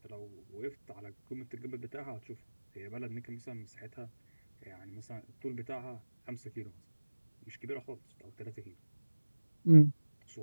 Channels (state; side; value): inverted; both; correlation -1.00